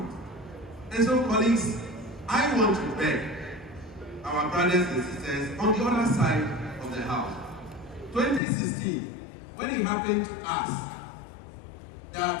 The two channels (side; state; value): right; drops out; at 8.4 s